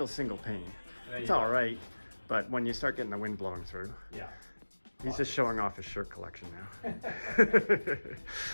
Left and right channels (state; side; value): inverted; both; correlation -1.00